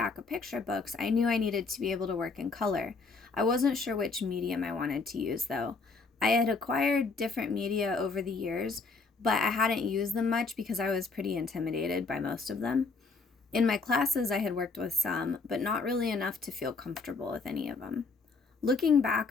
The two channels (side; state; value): right; quieter; 4.2 dB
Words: of picture books, I knew I needed to be able to work in color. I wasn't sure which medium I wanted to use, though. I had acquired different media over the years, but I hadn't used them much because I was pretty intimidated by most of them. In my classes, I had worked with some, but not really enough to feel comfortable with any of them. Looking back,